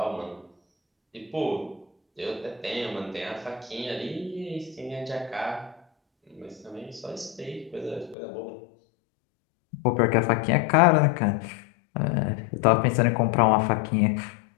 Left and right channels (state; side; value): drops out; right; at 8.2 s